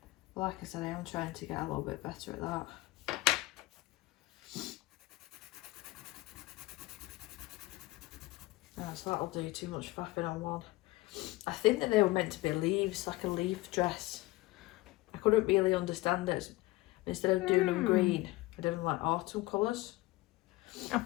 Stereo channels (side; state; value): right; quieter; 19.9 dB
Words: Like I said, I am trying to get a little bit better at that. No, so that'll do too much faffing on one. I think that they were meant to be leaves, like a leaf dress. I couldn't really understand it. Instead of doing them green, I did them like autumn colours. I